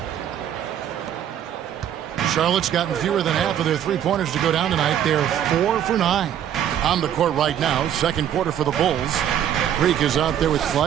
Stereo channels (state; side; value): quieter; left; 10.1 dB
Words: Charlotte's gotten fewer than half of their three-pointers to go down tonight. They're 4 for 9. On the court right now, second quarter for the Bulls. Greek is out there with